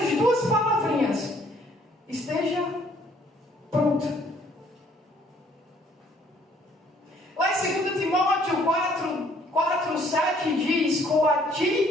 2 palavrinhas: esteja pronto. Lá em 2 Timóteo 4:7 diz:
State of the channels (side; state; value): both; normal; correlation 0.62